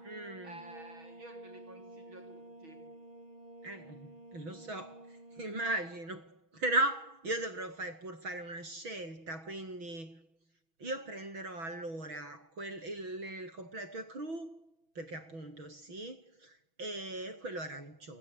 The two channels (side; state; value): left; late; 6.2 ms